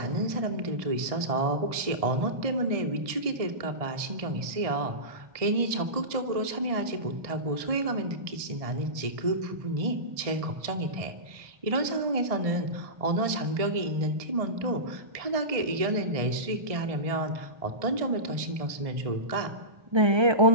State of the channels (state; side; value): late; left; 1.6 ms